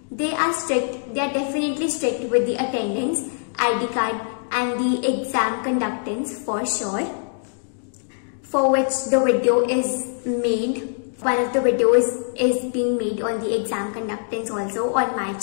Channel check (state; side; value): silent; right; digital silence